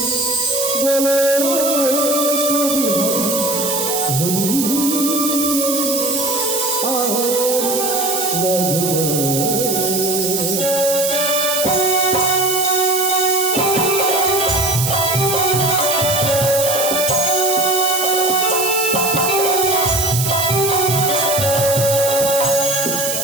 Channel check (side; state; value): right; noise; hiss, 2 dB below the sound